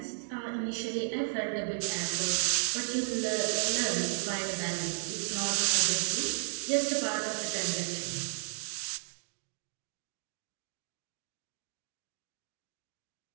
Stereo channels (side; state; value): left; silent; digital silence